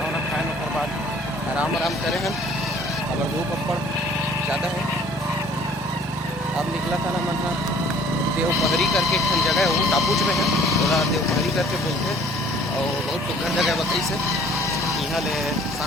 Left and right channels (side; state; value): both; normal; correlation 0.54